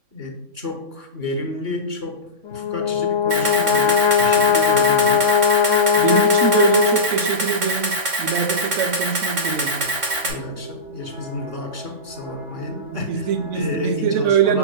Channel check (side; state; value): left; late; 3.6 ms